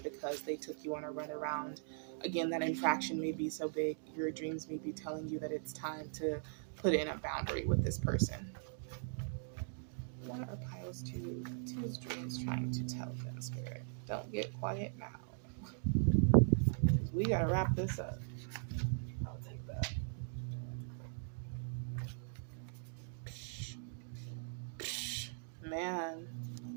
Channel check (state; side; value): silent; left; digital silence